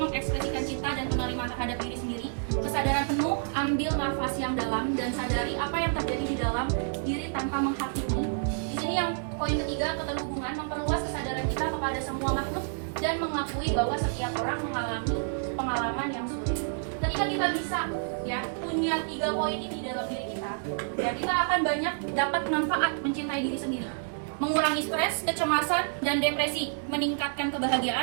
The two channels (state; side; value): silent; left; digital silence